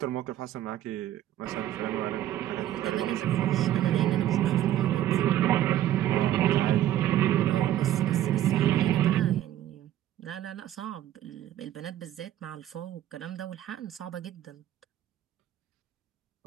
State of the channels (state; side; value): quieter; left; 12.4 dB